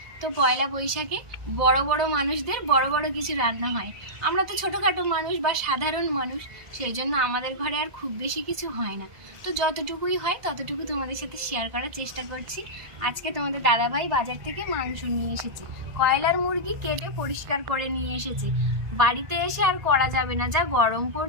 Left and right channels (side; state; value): left; late; 1.8 ms